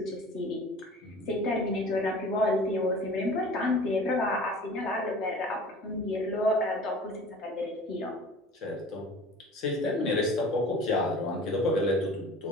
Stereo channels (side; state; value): both; normal; correlation 0.43